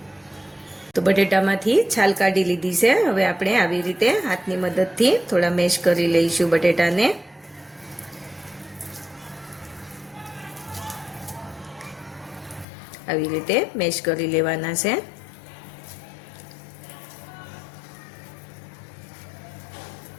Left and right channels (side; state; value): right; drops out; at 12.7 s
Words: तो बटेटामांथी छाल काढी लीधी छे। हवे आपणे आवी रीते हाथनी मददथी थोड़ा मेश करी लईशुं बटेटाने। आवी रीते मेश करी लेवाना छे।